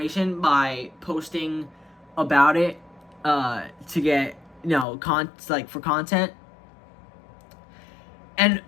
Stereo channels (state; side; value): drops out; right; at 4.9 s